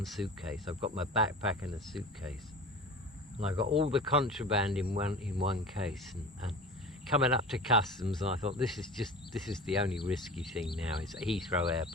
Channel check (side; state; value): both; normal; correlation 0.36